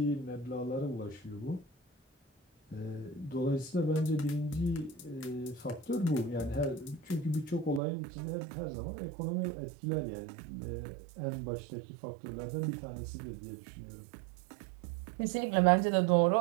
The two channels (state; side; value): drops out; left; at 7.8 s